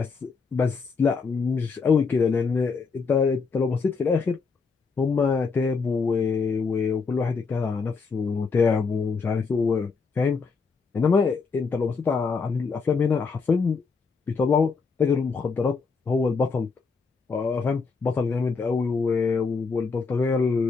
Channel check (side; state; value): right; quieter; 4.9 dB